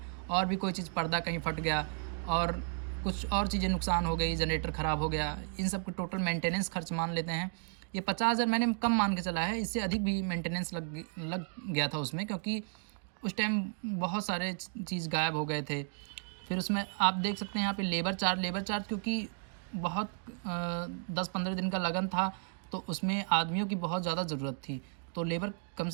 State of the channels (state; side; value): silent; left; 55 dB below the other